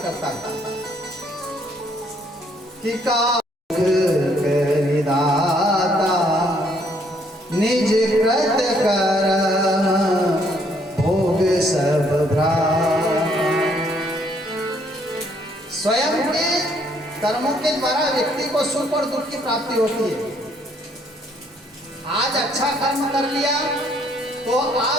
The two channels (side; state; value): both; normal; correlation 0.67